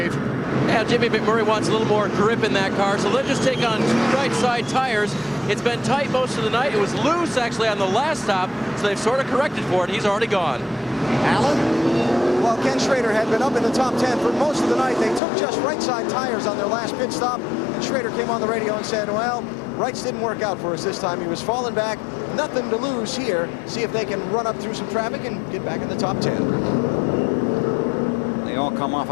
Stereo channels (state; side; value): drops out; right; at 15.2 s